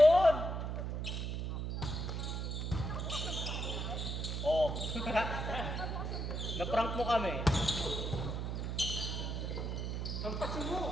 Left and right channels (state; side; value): noise; right; hum, 2 dB below the sound